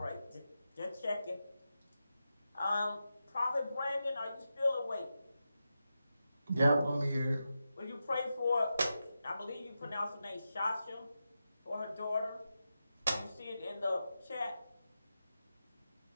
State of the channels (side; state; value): both; inverted; correlation -0.90